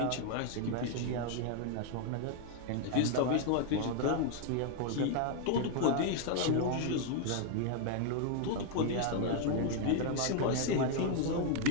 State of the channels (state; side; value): different; both; correlation 0.00